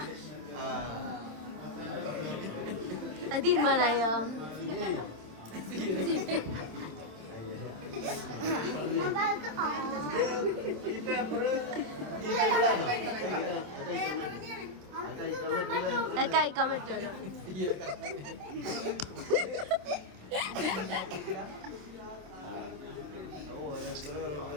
അത് തീരുമാനായോ? കഴിക്കാൻ പറ്റുമല്ലോ.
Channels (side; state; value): left; late; 27 ms